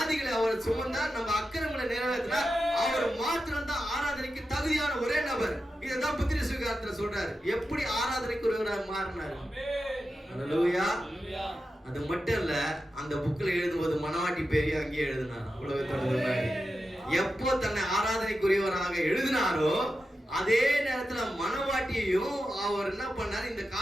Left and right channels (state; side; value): normal; both; correlation 0.91